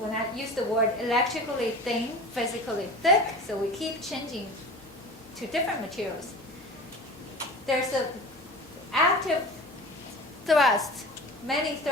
I use the word electrically thin, physically thick, so we keep changing to different materials. there's a active thrust, many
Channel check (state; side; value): normal; both; correlation 0.36